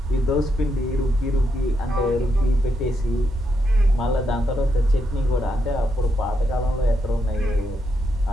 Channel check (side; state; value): both; normal; correlation 0.81